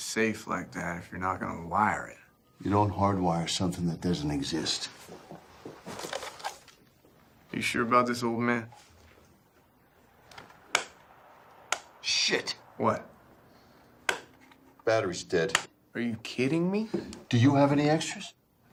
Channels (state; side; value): identical; both; correlation 1.00